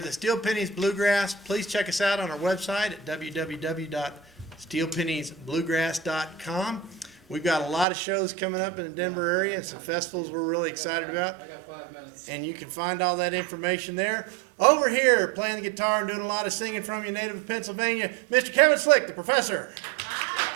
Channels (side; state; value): left; drops out; at 7.9 s